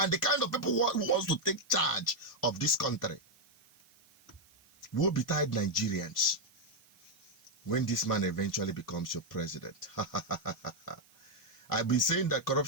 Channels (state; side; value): noise; right; hiss, 29 dB below the sound